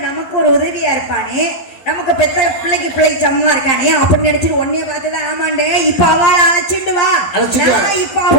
நமக்கு ஒரு உதவியா இருப்பானே. நமக்கு பெத்த பிள்ளைக்கு சமமா இருக்கானே அப்படி நினைச்சிட்டு உன்னைய பார்த்துதான் ஆமாண்டே இப்ப அவளை அழைச்சிட்டு வா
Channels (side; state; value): right; late; 11 ms